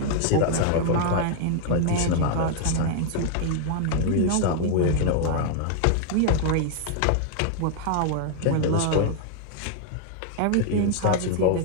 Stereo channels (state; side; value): different; both; correlation 0.00